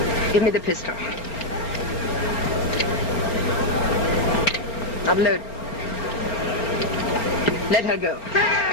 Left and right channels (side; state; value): right; late; 4.3 ms